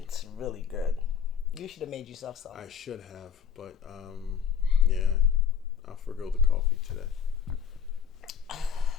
really good. You should have made yourself some. I should have, but yeah, I'll forgo the coffee today. I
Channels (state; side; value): quieter; right; 7.5 dB